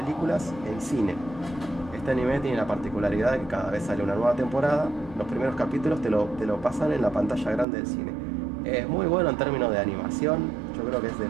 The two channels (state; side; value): drops out; left; at 7.7 s